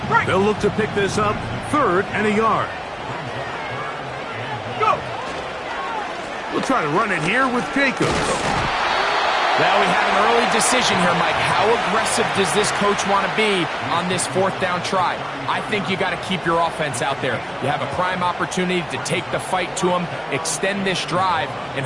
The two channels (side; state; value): both; identical; correlation 1.00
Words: They'll look to pick this up 3rd and a yard. Go. We'll try to run it here with Jacobs. Well, we have an early decision here, Mike. How aggressive does this coach want to be on this 4th down try? I think you got to keep your offense out there. You have a prime opportunity to take the fight to them, extend this drive, and